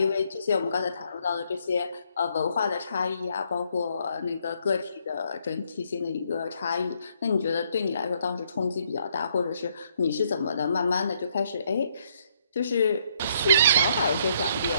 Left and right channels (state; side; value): inverted; both; correlation -0.70